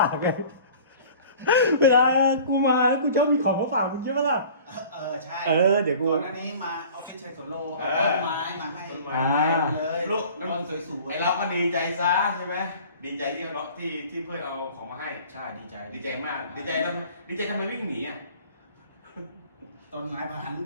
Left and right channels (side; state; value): both; inverted; correlation -0.45